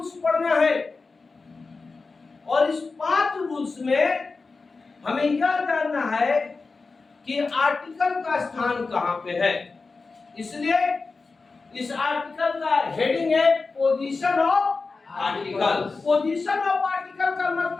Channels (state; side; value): quieter; right; 4.1 dB